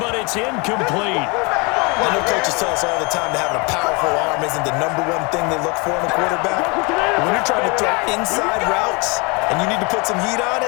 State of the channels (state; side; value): quieter; right; 29.6 dB